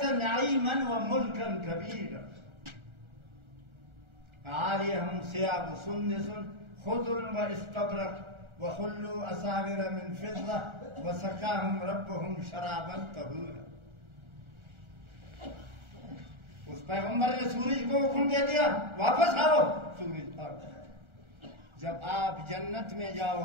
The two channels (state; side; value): late; left; 1.4 ms